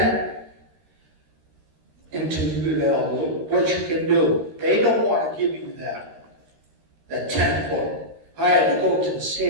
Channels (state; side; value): late; left; 13 ms